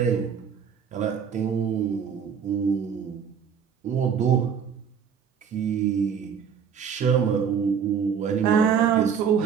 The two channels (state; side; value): quieter; left; 7.2 dB